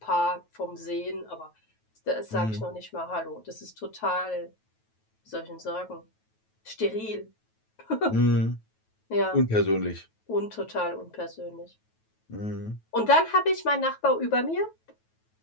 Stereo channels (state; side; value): late; right; 9.2 ms